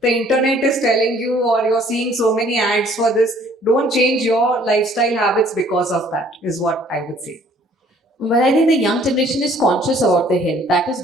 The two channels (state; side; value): normal; both; correlation 0.58